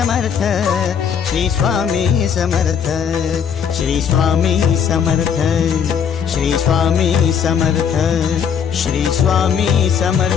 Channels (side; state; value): right; quieter; 7.5 dB